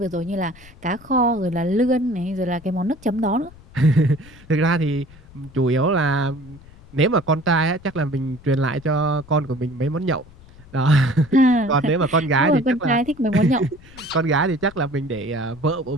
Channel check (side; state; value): left; noise; rumble, 22 dB below the sound